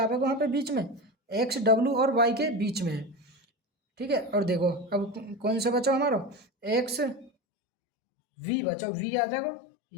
वहाँ पे बीच में, X W और Y के बीच में है, ठीक है। और देखो अब कौन सा बचा हमारा? X V बचा, V आ जाएगा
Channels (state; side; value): drops out; right; at 7.3 s